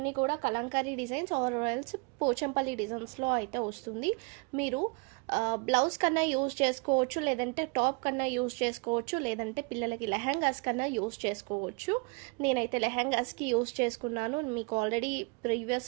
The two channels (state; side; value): quieter; left; 30.6 dB